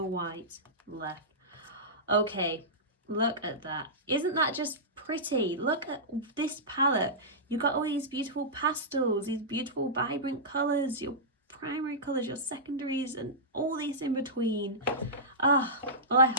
white left. Okay, look at that. Isn't that just pretty? Look at this palette. You've got all these beautiful pastels, these beautiful vibrant colours, your primary colours, your secondaries, and all this in between. Well, I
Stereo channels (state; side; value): normal; both; correlation -0.15